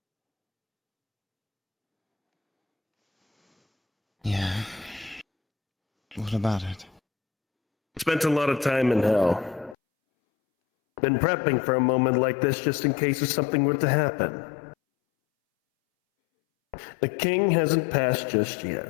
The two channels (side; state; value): right; drops out; at 9.8 s